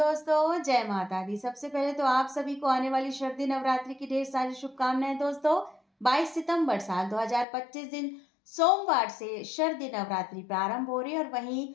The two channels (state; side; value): drops out; right; at 7.5 s